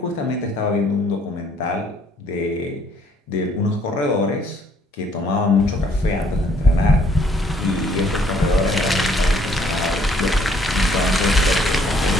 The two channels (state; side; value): normal; both; correlation 0.64